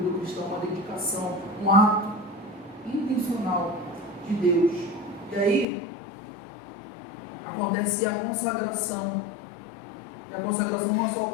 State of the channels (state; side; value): drops out; right; at 5.7 s